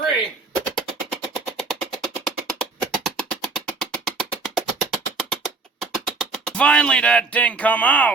Finally, that thing come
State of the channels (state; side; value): quieter; left; 3.9 dB